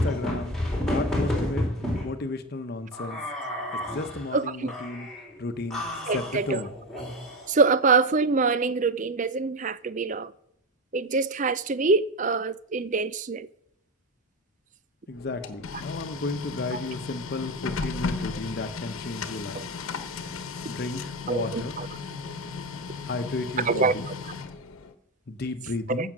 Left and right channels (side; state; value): both; normal; correlation 0.17